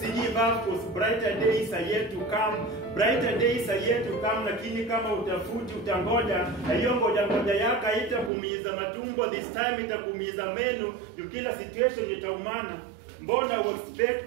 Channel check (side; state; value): left; drops out; at 8.3 s